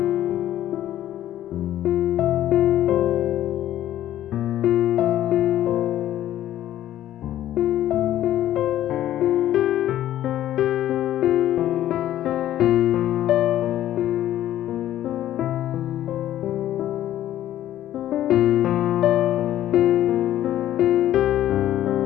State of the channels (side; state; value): right; quieter; 12.7 dB